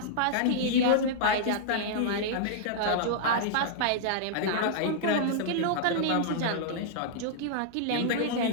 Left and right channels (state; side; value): different; both; correlation -0.02